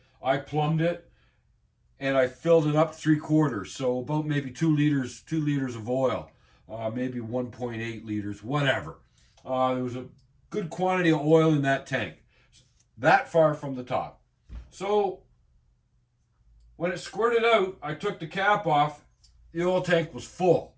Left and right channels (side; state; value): both; identical; correlation 1.00